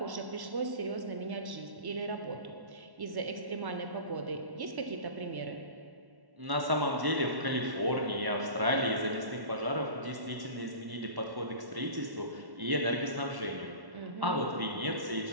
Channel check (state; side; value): late; left; 1.1 ms